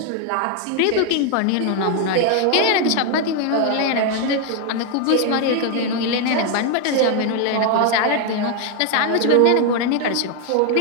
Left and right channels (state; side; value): different; both; correlation 0.01